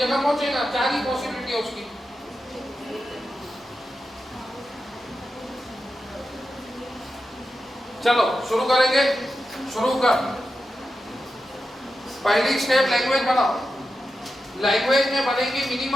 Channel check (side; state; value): both; normal; correlation 0.90